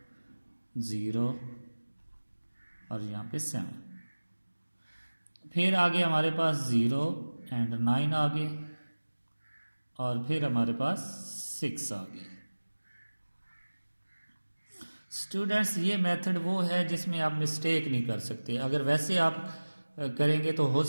0 और यहाँ पे 7। फिर आगे हमारे पास 0 एंड 9 आ गए और फिर हमारे पास 6 आ गए। स्टूडेंट्स ये मेथड वो है जिसमें आप मिस्टेक नहीं कर सकते, अगर वैसे आप करेंगे तो हो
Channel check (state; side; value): inverted; both; correlation -1.00